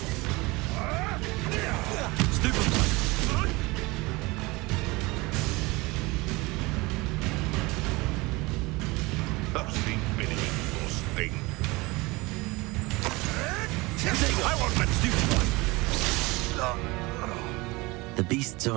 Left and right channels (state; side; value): quieter; left; 23.4 dB